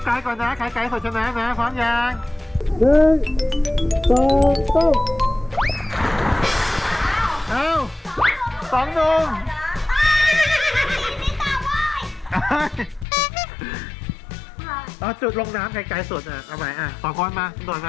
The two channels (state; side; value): drops out; right; at 13.1 s